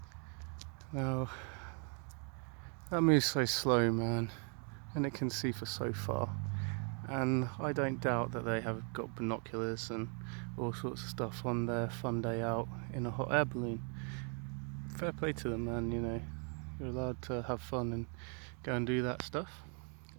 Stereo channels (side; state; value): left; quieter; 39.8 dB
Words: Now, that moves so slow, man, and it can see for so far. And I don't doubt that they have got binoculars and all sorts of stuff on their fun day out in a hot air balloon. Fair play to them, man, you know. You're allowed to have fun and go and do that stuff.